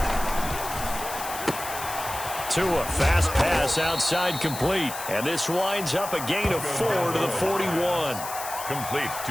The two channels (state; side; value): noise; left; hiss, 9 dB below the sound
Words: Tua, fast pass outside, complete. And this winds up a gain of 4 to the 41. Complete